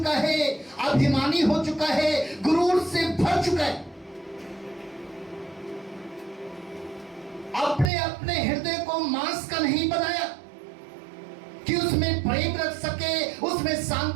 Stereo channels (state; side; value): drops out; left; at 7.9 s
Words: है, अभिमानी हो चुका है, गुरूर से भर चुका है। अपने अपने हृदय को मांस का नहीं बनाया कि उसमें प्रेम रख सके, उसमें